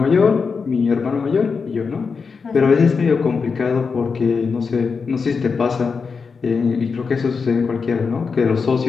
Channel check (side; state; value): right; quieter; 5.2 dB